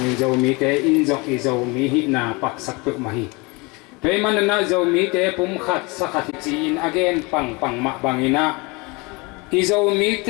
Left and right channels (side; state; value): right; quieter; 26.9 dB